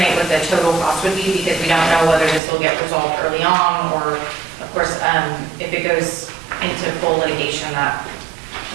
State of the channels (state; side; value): drops out; left; at 2.4 s